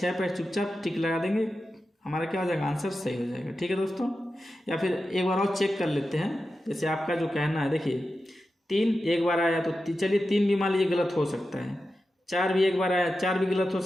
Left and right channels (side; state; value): both; normal; correlation 0.91